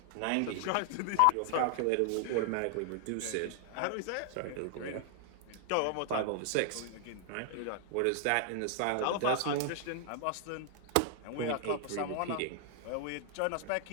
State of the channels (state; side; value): different; both; correlation 0.00